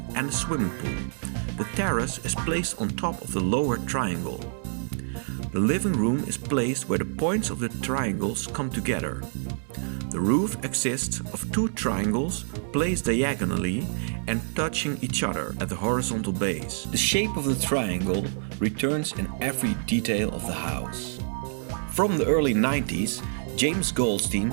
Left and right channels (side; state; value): left; silent; digital silence